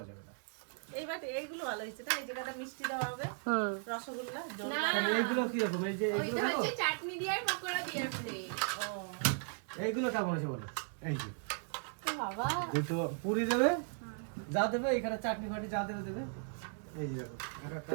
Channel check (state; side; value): silent; left; 53 dB below the other